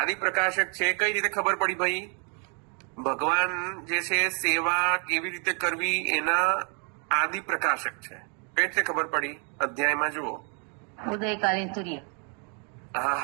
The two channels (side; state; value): left; quieter; 38.4 dB